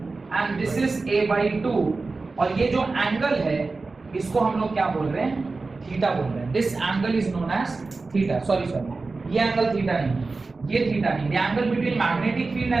and this is a/2, और ये जो एंगल है इसको हम लोग क्या बोल रहे हैं? थीटा बोल रहे हैं। This angle is known as theta. Sorry, ये एंगल थीटा नहीं, ये थीटा नहीं, the angle between magnetic field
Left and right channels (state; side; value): quieter; left; 3.8 dB